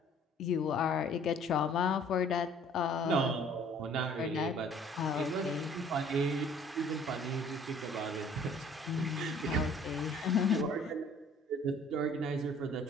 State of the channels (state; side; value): normal; both; correlation 0.55